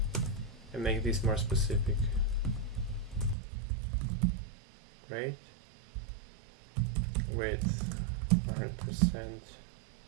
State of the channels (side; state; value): left; drops out; at 3.4 s